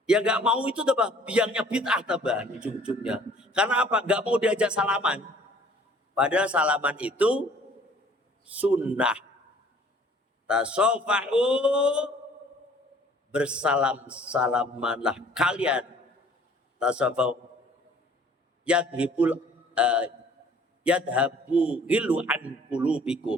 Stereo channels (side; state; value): both; normal; correlation 0.55